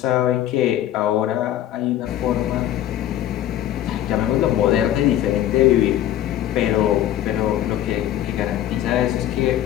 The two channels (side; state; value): right; quieter; 12.2 dB